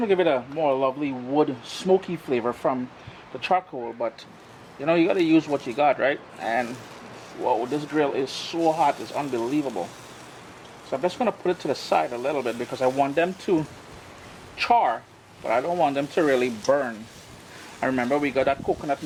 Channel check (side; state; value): both; identical; correlation 1.00